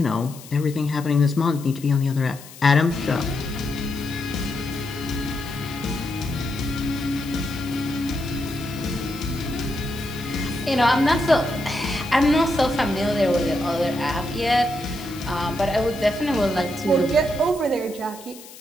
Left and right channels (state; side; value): noise; left; hiss, 18 dB below the sound